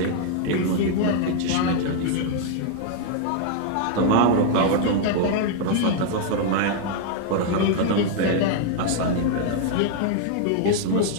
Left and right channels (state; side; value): different; both; correlation 0.00